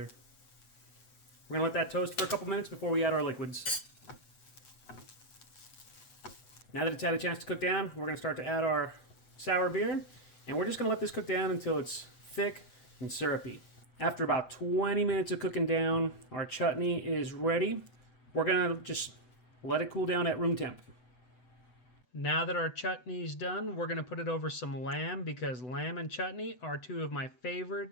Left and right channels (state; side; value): late; right; 8.0 ms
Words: We're going to let that toast for a couple minutes before we add our liquids. Now that it's had a chance to cook down, we're going to start to add our sour beer, and we're just going to let this cook down until it's thick and syrupy. After about 20 minutes of cooking down, our chutney is ready. We're going to just let it cool down at room temp. Now that our chutney's done, we're going to put it over some lamb because lamb and chutney are 2 of my